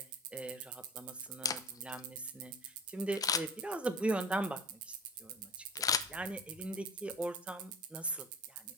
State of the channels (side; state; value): both; normal; correlation 0.39